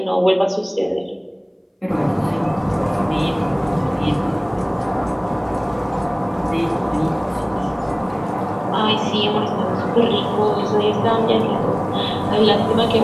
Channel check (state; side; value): identical; both; correlation 1.00